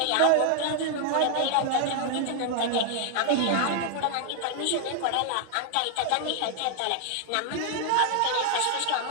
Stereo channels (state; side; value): different; both; correlation 0.00